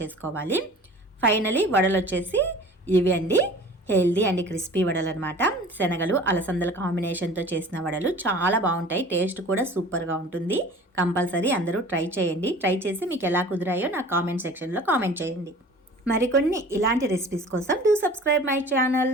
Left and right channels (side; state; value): both; normal; correlation 0.43